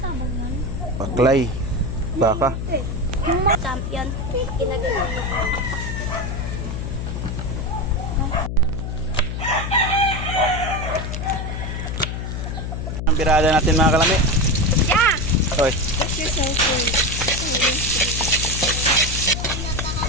yan? Paklay. Baka. Yung mga champion, ginagawa mo. Ang birada natin mga kalami. Yeah! Hoy. What's your cellphone?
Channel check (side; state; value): left; noise; hum, 4 dB below the sound